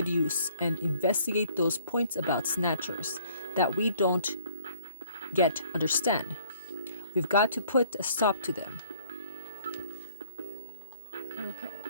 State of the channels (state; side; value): inverted; both; correlation -0.60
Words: use and investigate those points about snatchers that we don't yet understand. We've got to put a stop to them. Okay.